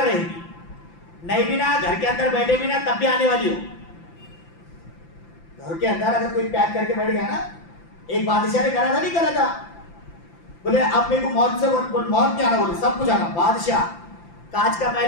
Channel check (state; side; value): late; right; 5.9 ms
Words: रहेगी। नहीं भी ना, घर के अंदर बैठे भी ना, तब भी आने वाली हो। घर के अंदर अगर कोई पैक करके बैठ गया ना, एक बादशाह ने करा था, नहीं करा था, बोले अब मेरे को मौत से मौत क्या आना, बोले सब कुछ आना। बादशाह कांच का